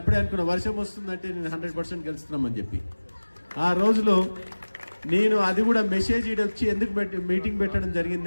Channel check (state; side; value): inverted; both; correlation -1.00